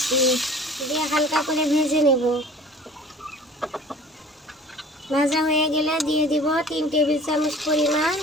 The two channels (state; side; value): normal; both; correlation 0.45